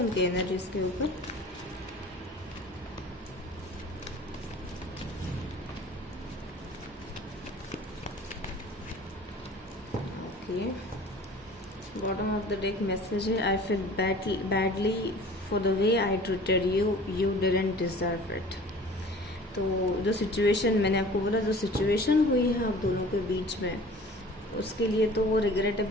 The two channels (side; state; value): both; normal; correlation 0.45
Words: एनर्जीज के ऊपर। Okay, bottom of the deck message है, I feel badly for the way I treated you didn't deserve it. तो जो सिचुएशन मैंने आपको बोला, जो सिचुएशन हुई है आप दोनों के बीच में, उसके लिए तो वो